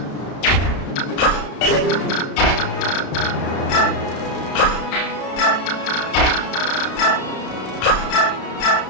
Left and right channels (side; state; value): right; late; 32 ms